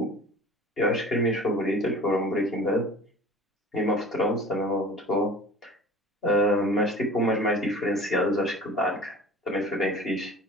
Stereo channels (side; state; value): both; normal; correlation 0.41